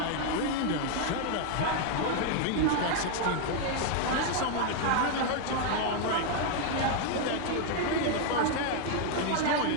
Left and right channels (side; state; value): both; different; correlation 0.00